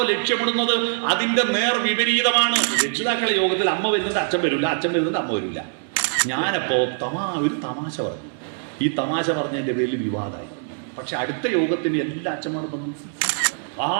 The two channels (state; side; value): silent; left; digital silence